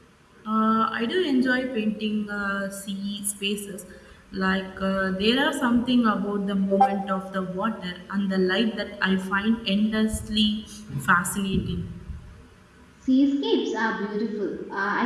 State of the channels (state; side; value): identical; both; correlation 1.00